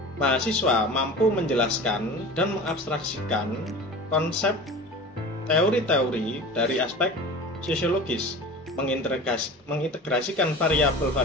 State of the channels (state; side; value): normal; both; correlation 0.36